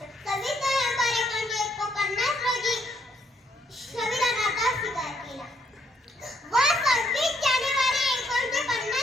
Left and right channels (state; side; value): normal; both; correlation 0.71